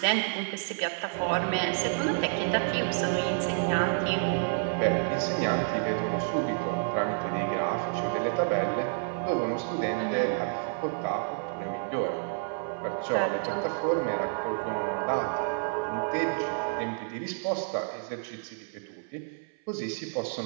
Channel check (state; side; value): silent; left; 57 dB below the other